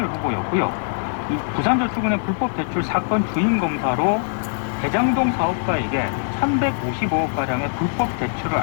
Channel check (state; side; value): silent; right; 64 dB below the other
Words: 후보였고요. 이 부산저축은행 불법 대출 사건 주인 검사로 대장동 사업가에게 1155억 가량의 불법 대출을